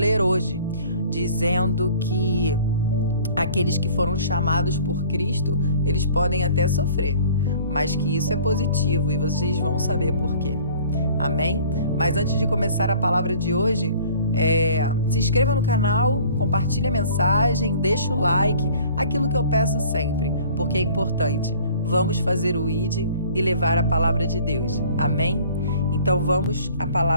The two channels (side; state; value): both; inverted; correlation -0.50